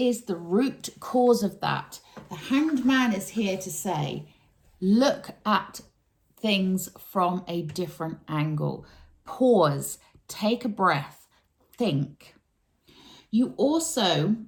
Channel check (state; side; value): identical; both; correlation 1.00